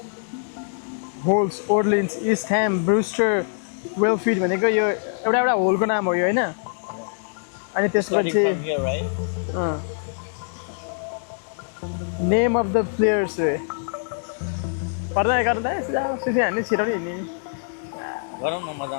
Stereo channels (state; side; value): silent; right; digital silence